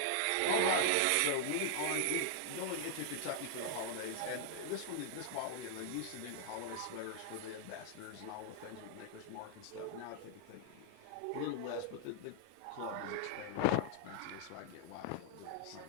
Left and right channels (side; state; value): both; different; correlation 0.00